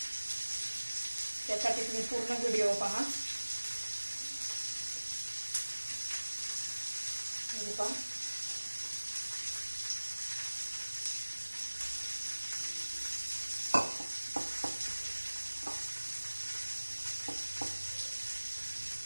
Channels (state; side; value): inverted; both; correlation -1.00